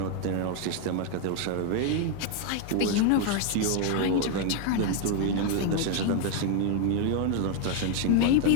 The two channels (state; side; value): different; both; correlation 0.00